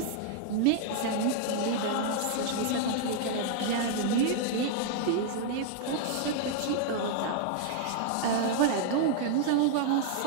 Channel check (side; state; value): both; different; correlation -0.01